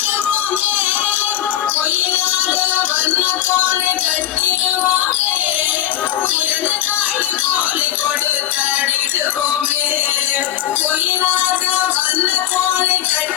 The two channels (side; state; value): right; quieter; 12.4 dB